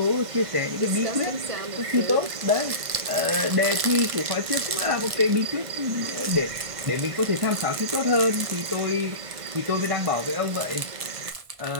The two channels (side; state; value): left; late; 1.5 ms